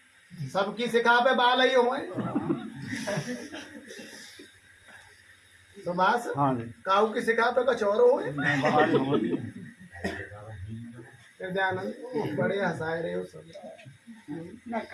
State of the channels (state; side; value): identical; both; correlation 1.00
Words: सबकी सिखा पे बाल ही हुए। सुभाष हाँ जी काऊ की सिखा पे कुछ और हुए। बाहर होती हृदयानंद बड़े हंसाए रहे हो सब। ना